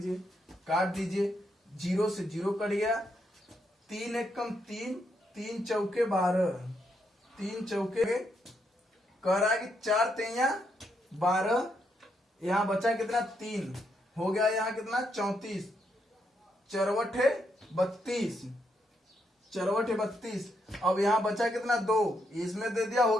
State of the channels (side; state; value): both; normal; correlation 0.78